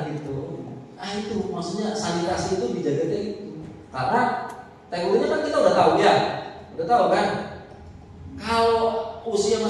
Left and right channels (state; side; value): identical; both; correlation 1.00